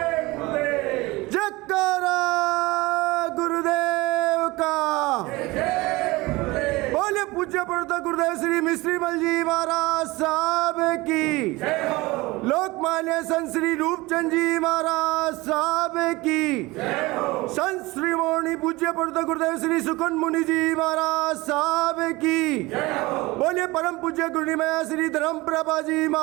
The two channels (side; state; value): left; quieter; 21.8 dB